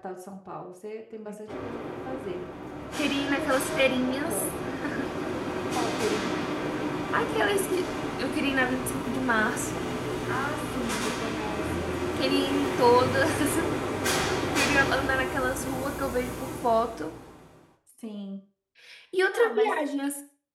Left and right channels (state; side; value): identical; both; correlation 1.00